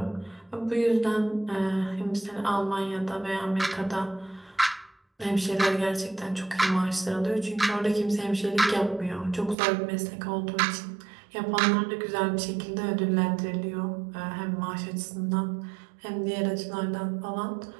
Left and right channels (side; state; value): left; drops out; at 9.6 s